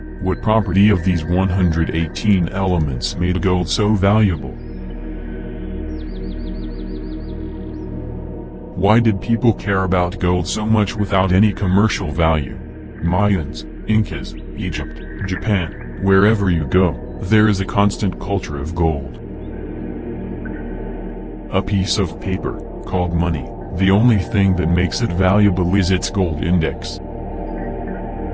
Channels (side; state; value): both; identical; correlation 1.00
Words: what property of these 118 elements made gold so valuable? Why did people care about gold so much without any commercial value? Mayans, Incas, Egypt, Japan, wherever you go, there is a constant culture of gold. A piece of paper, called money, the only thing that makes it valuable is its gold index.